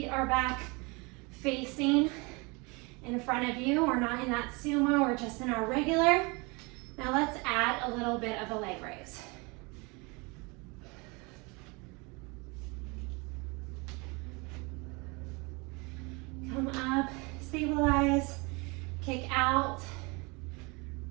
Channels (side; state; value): left; quieter; 28.2 dB